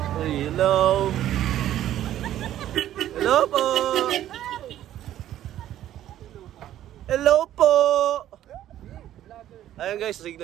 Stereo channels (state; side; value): quieter; left; 12.3 dB